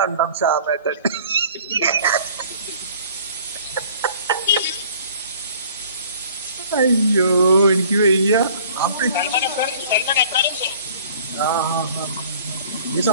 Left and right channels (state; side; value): inverted; both; correlation -0.51